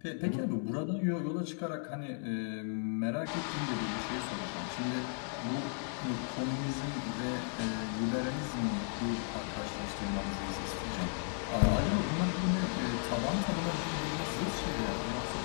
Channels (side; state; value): right; silent; 54 dB below the other